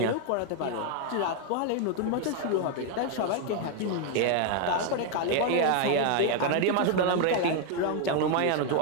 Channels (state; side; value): different; both; correlation 0.00